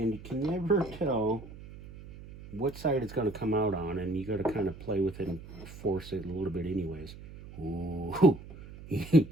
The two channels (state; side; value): noise; right; hum, 15 dB below the sound